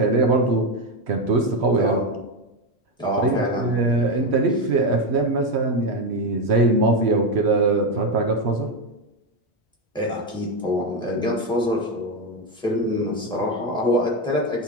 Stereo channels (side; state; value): both; normal; correlation 0.10